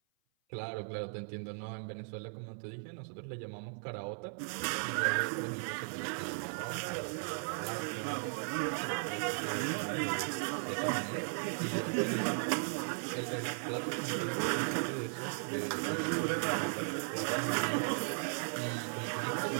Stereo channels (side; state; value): left; silent; 53 dB below the other